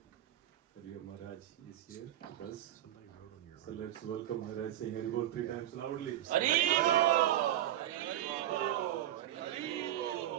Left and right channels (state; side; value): quieter; left; 12.8 dB